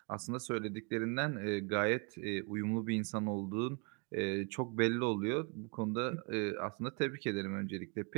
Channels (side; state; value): left; quieter; 33.3 dB